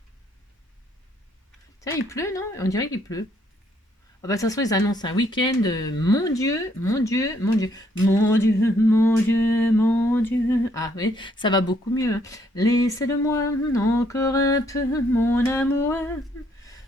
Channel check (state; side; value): normal; both; correlation 0.69